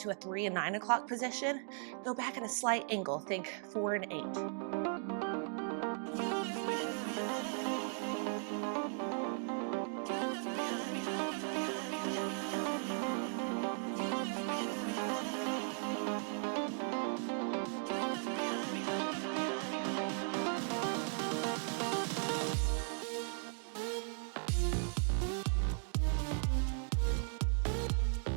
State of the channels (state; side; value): silent; left; 53 dB below the other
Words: to a 3 and 9 o'clock position, go back at a slight angle. Think 4 and 8.